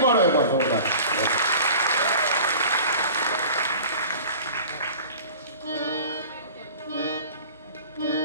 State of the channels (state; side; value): inverted; both; correlation -0.40